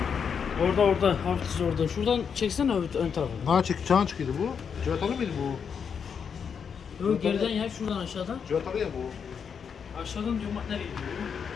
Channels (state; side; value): quieter; right; 6.8 dB